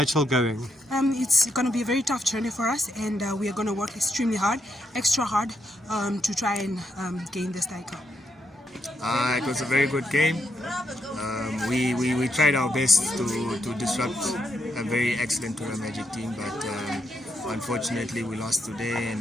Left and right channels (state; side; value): normal; both; correlation 0.79